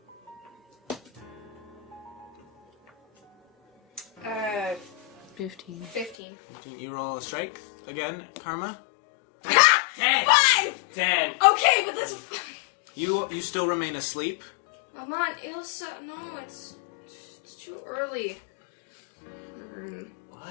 Uh, 15. 15. 15. You roll a strength again, Karma. 10! 5! 10! Okay, but that's... You still remain asleep. Come on, Ilsa. No, it's too early. What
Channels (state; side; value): drops out; right; at 6.2 s